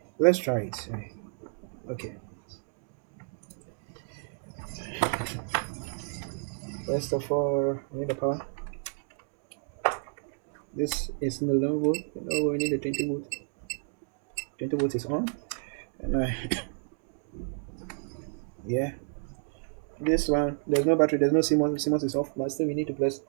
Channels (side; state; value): left; silent; 57 dB below the other